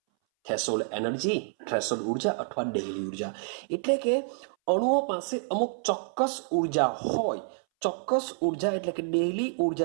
એનર્જી, થ્રેશોલ્ડ ઉર્જા અથવા દહેલી ઉર્જા. એટલે કે અણુઓ પાસે અમુક ચોક્કસ ઉર્જા હોય, ચોક્કસ ઉર્જા એટલે કે દહેલી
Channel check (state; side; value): silent; left; 59 dB below the other